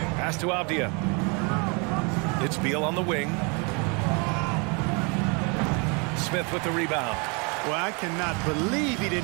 Pass to Avdia. It's Beal on the wing. Smith with the rebound. Well, I cannot believe he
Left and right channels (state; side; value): quieter; left; 32.3 dB